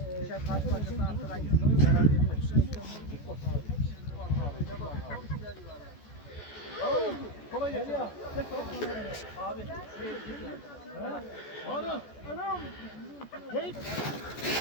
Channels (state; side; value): late; right; 14 ms